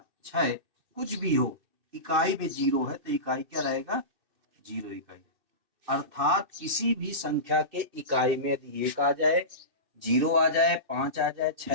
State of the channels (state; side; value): late; left; 2.7 ms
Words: 6 कुछ भी हो, इकाई में 0 है तो इकाई क्या रहेगा, 0 इकाई। अर्थात किसी भी संख्या के इकाई में यदि 1 आ जाए, 0 आ जाए, 5 आ जाए,